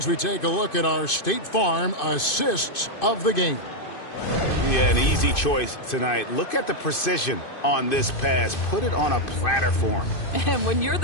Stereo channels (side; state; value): right; late; 2.6 ms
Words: we take a look at our State Farm assists of the game. Yeah, an easy choice tonight. Look at the precision on this pass. Put it on a platter for him. And when you're